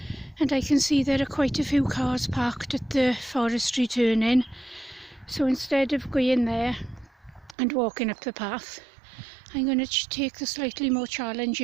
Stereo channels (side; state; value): left; drops out; at 7.6 s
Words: and I can see there are quite a few cars parked at the forestry turn-in. So instead of going there and walking up the path, I'm going to take the slightly more